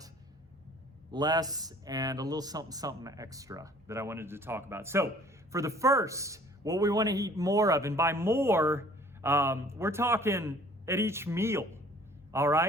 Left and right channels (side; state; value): both; normal; correlation 0.54